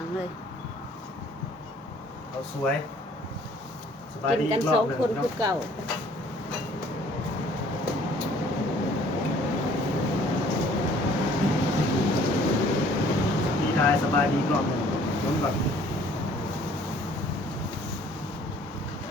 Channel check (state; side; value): normal; both; correlation 0.56